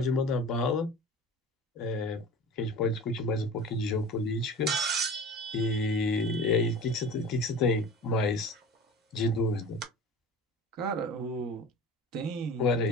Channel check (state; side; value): normal; both; correlation 0.37